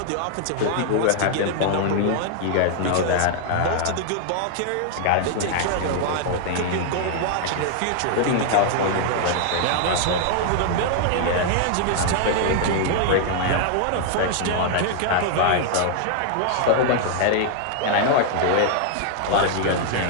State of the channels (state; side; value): different; both; correlation 0.00